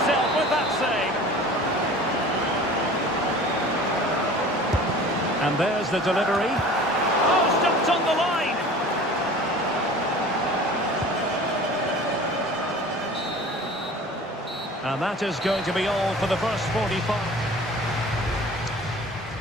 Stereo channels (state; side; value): normal; both; correlation 0.42